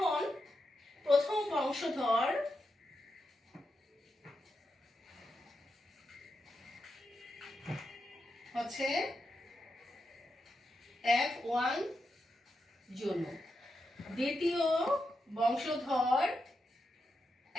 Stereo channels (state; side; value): normal; both; correlation 0.86